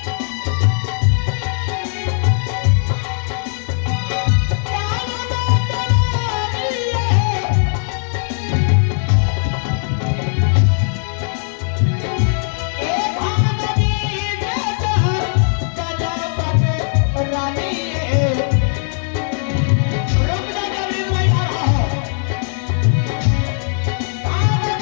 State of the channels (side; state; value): right; silent; 66 dB below the other